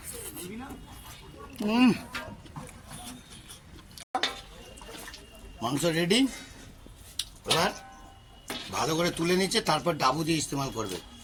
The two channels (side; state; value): both; identical; correlation 1.00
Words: মাংস রেডি। এবার ভালো করে তুলে নিচ্ছে, তারপর ডাবু দিয়ে ইস্তেমাল করবে,